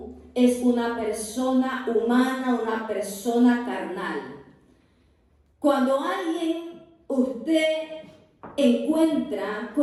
es una persona humana, una persona carnal. Cuando usted encuentra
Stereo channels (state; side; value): identical; both; correlation 1.00